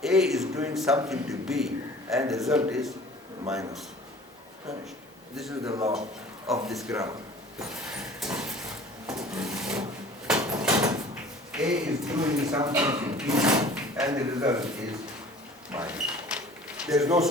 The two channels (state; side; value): normal; both; correlation 0.46